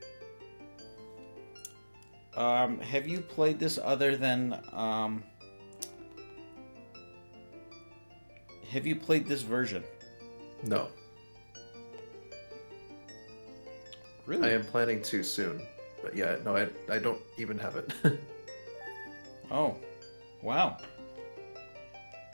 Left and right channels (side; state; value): both; inverted; correlation -1.00